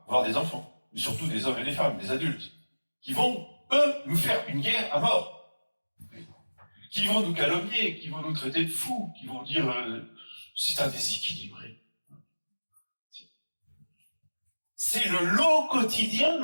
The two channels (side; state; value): both; inverted; correlation -1.00